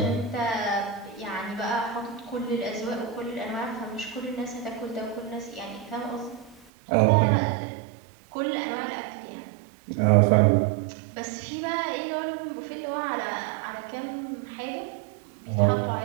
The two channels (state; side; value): drops out; left; at 6.7 s